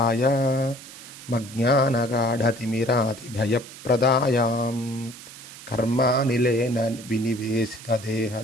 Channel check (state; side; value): noise; right; hiss, 16 dB below the sound